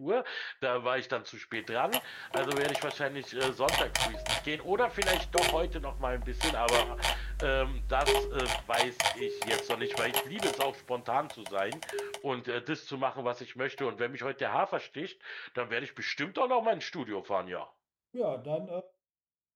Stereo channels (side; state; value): both; identical; correlation 1.00